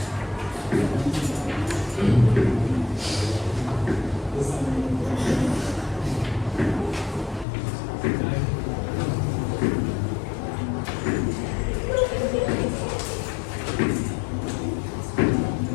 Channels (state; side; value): drops out; right; at 7.5 s